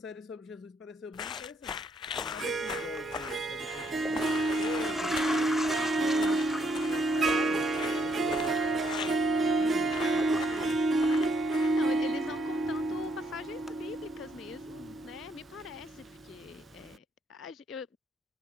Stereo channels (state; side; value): normal; both; correlation 0.72